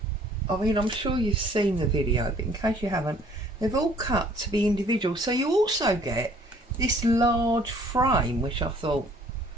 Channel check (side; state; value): both; normal; correlation 0.57